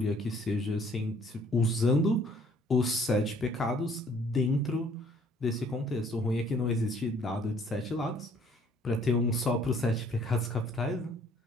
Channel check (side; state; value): both; normal; correlation 0.60